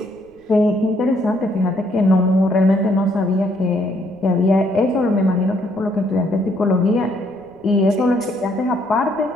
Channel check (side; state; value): right; noise; rumble, 30 dB below the sound